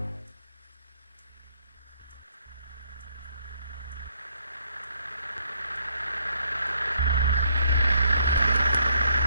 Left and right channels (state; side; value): inverted; both; correlation -0.69